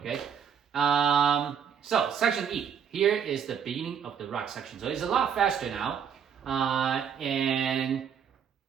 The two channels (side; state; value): left; quieter; 7.6 dB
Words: So section E, here is the beginning of the rock section. So it's a lot faster now.